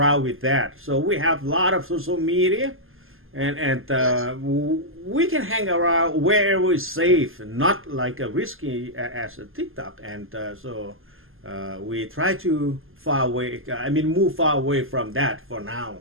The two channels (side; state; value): left; late; 0.60 ms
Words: with that. So we have a lot of social media, and we can hang around wherever it's safe, not like a risky as a TikTok. And so we try to move far away from that for